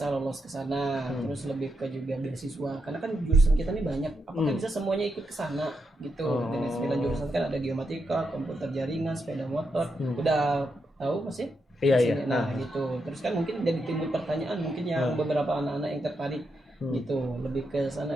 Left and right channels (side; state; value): both; normal; correlation 0.83